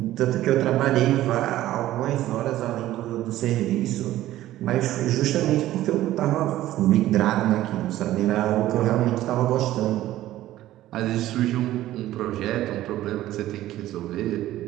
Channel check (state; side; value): quieter; left; 14.5 dB